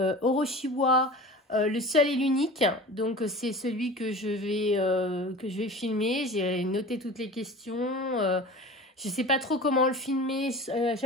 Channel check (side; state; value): both; normal; correlation 0.37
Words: Oroshiwa. Le seul et l'unique, donc c'est celui que je vais filmer. J'ai noté toutes les questions. Je sais pas trop comment le filmer.